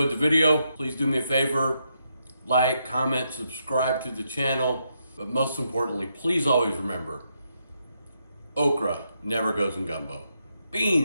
the video. Please do me a favor, like, comment, subscribe to the channel. But most importantly, please always remember, okra never goes in gumbo.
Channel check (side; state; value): both; inverted; correlation -0.80